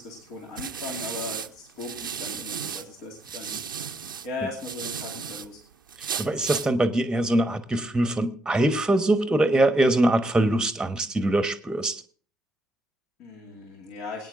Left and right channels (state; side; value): normal; both; correlation 0.78